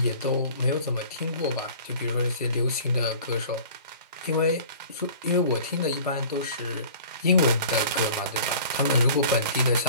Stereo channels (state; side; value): inverted; both; correlation -0.45